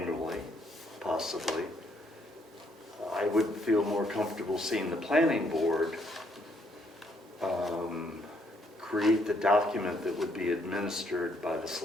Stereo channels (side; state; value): both; normal; correlation 0.70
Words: possibly, I would feel more comfortable seeing the planning board create the document that would be administered by the